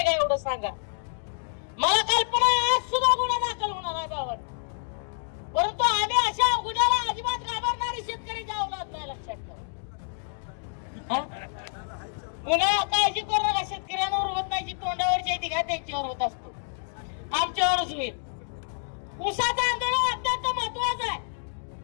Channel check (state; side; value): silent; right; digital silence